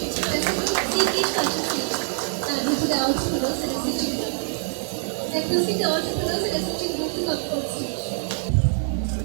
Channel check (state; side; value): silent; left; 62 dB below the other